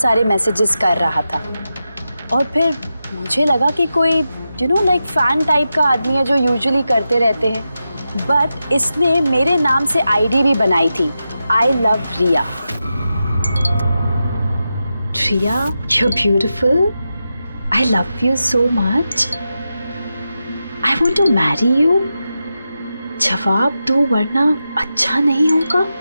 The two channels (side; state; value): both; inverted; correlation -0.90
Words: मैसेजेस कर रहा था, और फिर मुझे लगा कि कोई लाइक फैन टाइप का आदमी है जो यूजुअली करते रहते हैं। बट इसने मेरे नाम से आईडी भी बनाई थी, I love Riya. Riya, you're beautiful. I love you so much. I want to marry you. जवाब दो वरना अच्छा नहीं होगा,